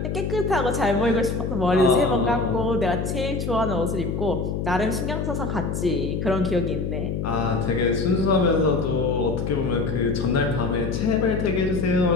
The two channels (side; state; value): left; noise; hum, 2 dB below the sound